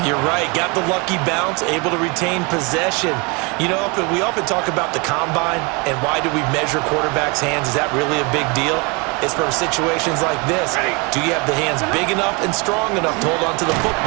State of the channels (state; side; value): quieter; left; 29.7 dB